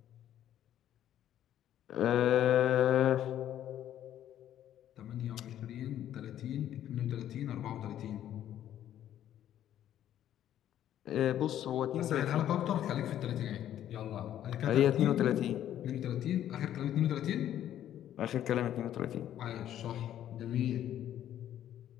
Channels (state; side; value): quieter; right; 11.3 dB